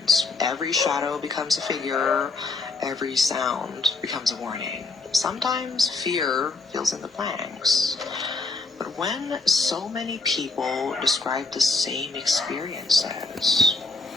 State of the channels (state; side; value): quieter; right; 3.7 dB